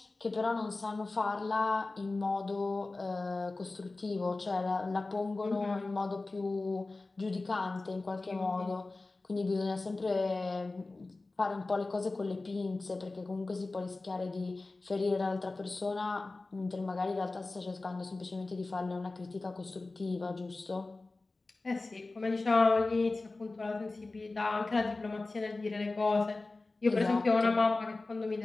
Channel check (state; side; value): quieter; right; 3.3 dB